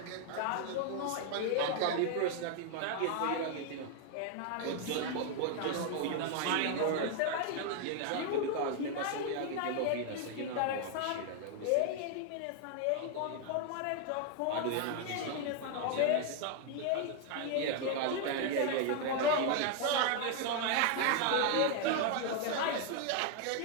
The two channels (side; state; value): both; different; correlation 0.00